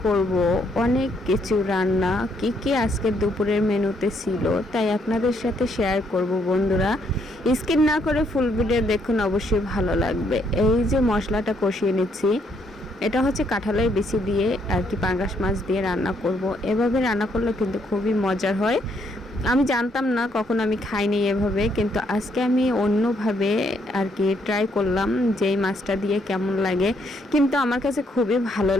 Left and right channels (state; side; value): normal; both; correlation 0.72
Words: করব অনেক কিছু রান্না, কি আজকে দুপুরের মেনুতে ছিল, তাই আপনাদের সাথে শেয়ার করব বন্ধুরা। স্কিপ না করে ফুল ভিডিও দেখুন, অবশ্যই ভালো লাগবে। এই যে মশলাটা কষিয়ে নিচ্ছি, এটা হচ্ছে কাঁঠালের বিচি দিয়ে আর কি পাঙ্গাস মাছ দিয়ে রান্না করব। এভাবে রান্না করলে কিন্তু খুবই মজার হয়। আমি জানতাম না, কখনো আমি খাইনি এভাবে, কিন্তু আজকে আমি অন্যভাবে আর কি ট্রাই করলাম যে এই মাছটা দিয়ে কেমন লাগে। কিন্তু আমার কাছে খুবই ভালো